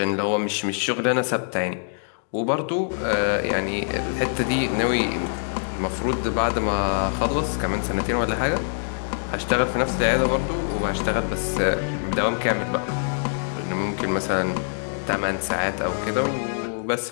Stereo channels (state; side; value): silent; right; digital silence